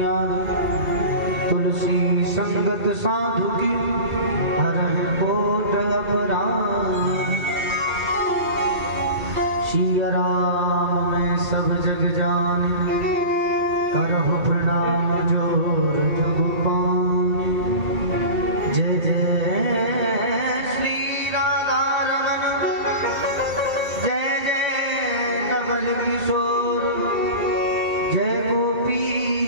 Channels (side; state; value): left; late; 2.3 ms